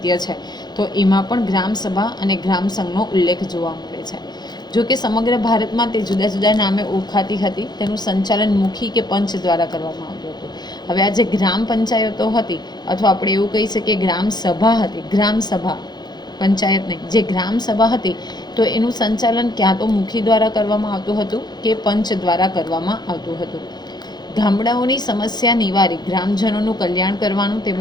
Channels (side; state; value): right; late; 0.20 ms